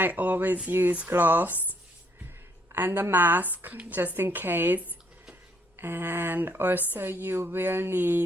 always use gloves and a mask just in case. And also you will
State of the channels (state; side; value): normal; both; correlation 0.69